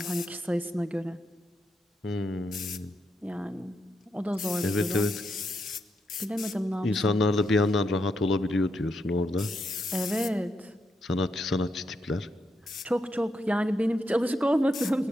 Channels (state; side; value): normal; both; correlation 0.82